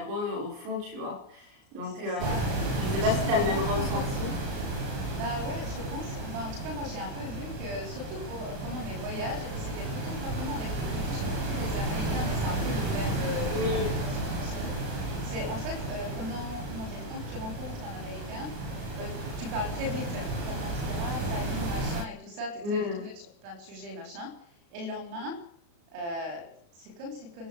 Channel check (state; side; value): late; left; 38 ms